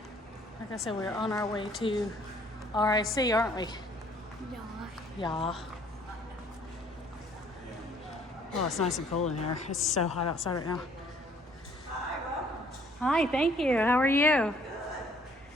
Like I said, we're on our way to RIC, aren't we? Yeah. Oh, it's nice and cool in here. It's so hot outside right now. Hi, thank you. How are you?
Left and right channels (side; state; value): both; normal; correlation 0.60